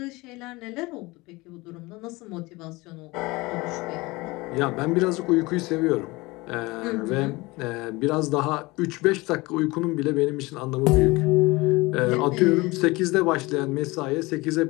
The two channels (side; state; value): right; quieter; 22.7 dB